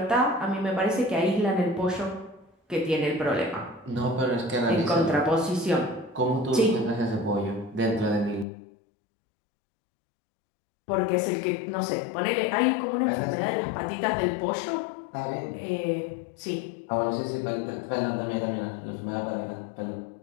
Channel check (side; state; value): right; drops out; at 8.5 s